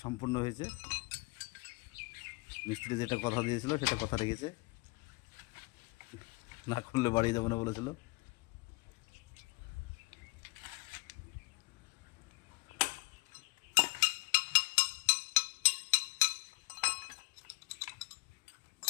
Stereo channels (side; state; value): right; quieter; 24.7 dB